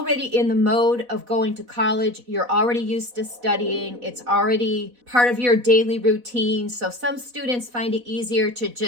in the mode of going to college. You're already used to studying. It's already part of your daily routine. So some students find it easier to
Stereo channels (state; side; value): late; left; 4.1 ms